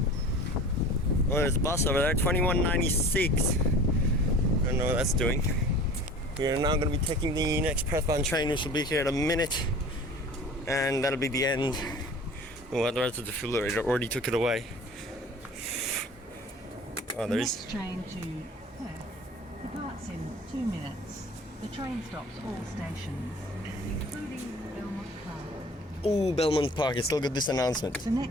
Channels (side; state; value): both; normal; correlation 0.43